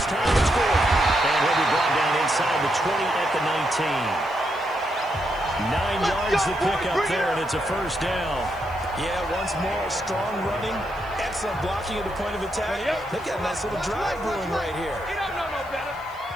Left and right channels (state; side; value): noise; right; hiss, 27 dB below the sound